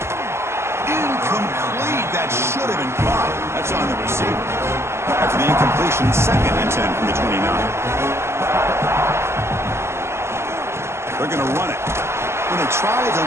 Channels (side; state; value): left; late; 0.13 ms